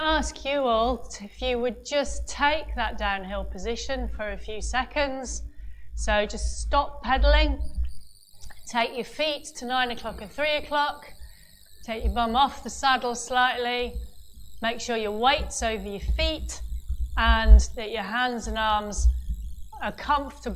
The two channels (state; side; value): identical; both; correlation 1.00